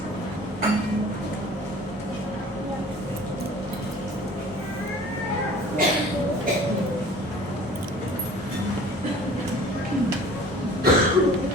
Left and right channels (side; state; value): both; normal; correlation 0.46